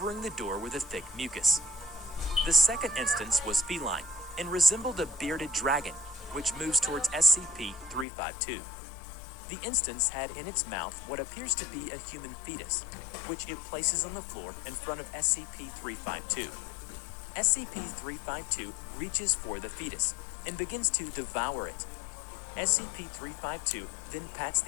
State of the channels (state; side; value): drops out; right; at 8.1 s